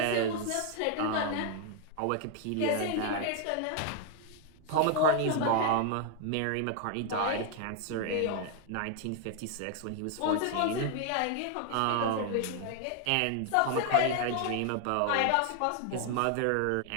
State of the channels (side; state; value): both; different; correlation 0.00